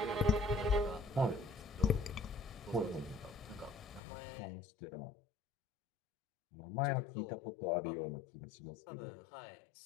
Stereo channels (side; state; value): right; drops out; at 4.0 s